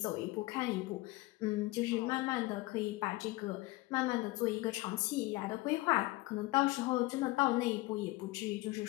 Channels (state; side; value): quieter; right; 20.6 dB